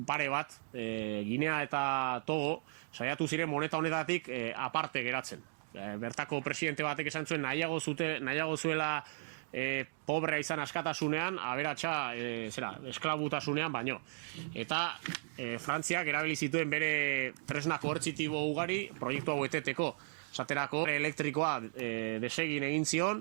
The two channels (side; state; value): left; silent; digital silence